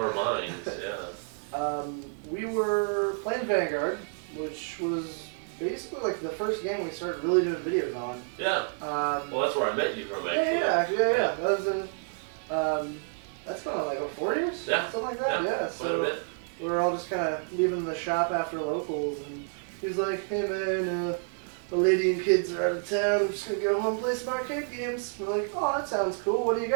minds. Yeah. We were playing Vanguard, which was basically like the first game we started really doing videos on. Yeah. Well, that's where I met you from, actually. Yeah. That was that's going on like 4 years? Yeah. Something like that, yeah. So we were all just kind of leaving the shop after locals, and he's like, hey man, the lady and kids are out of town, I'm just going to go home and play some arcade games. We're like, oh, that sounds cool, what do you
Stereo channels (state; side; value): silent; left; 58 dB below the other